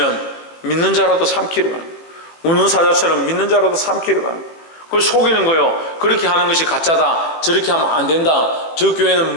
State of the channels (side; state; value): right; late; 18 ms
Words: 믿는 자라도 삼키려 하는 거예요. 우는 사자처럼 믿는 자라도 삼키려 하는 거예요. 그걸 속이는 거예요. 그렇게 하는 것이 가짜다, 저렇게 하면 안 된다, 저 교회는